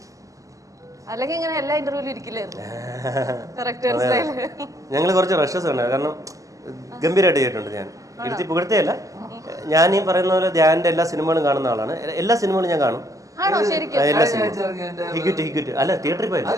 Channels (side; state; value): left; late; 0.16 ms